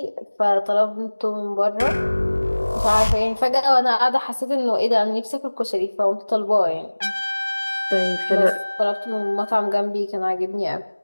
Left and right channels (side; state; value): both; inverted; correlation -1.00